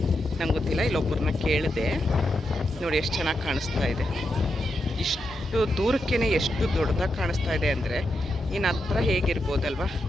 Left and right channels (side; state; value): both; normal; correlation 0.85